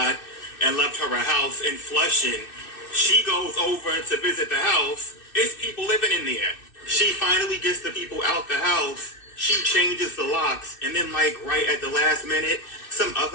and left her a house in Flushing. She goes over to visit the house. It's people living in there. She finally gets the people out the house. She changes the locks, and then like right at the last minute, some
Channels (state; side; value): late; right; 2.6 ms